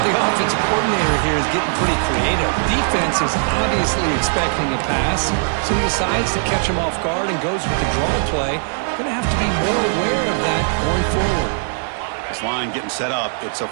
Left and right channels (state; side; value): silent; left; digital silence